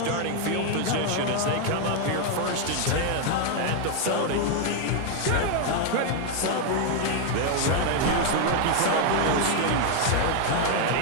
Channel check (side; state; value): both; different; correlation 0.01